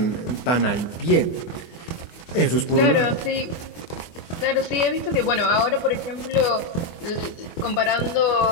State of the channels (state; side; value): late; right; 24 ms